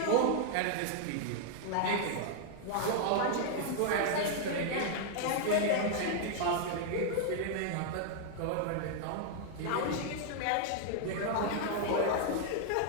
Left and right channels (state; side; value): different; both; correlation -0.01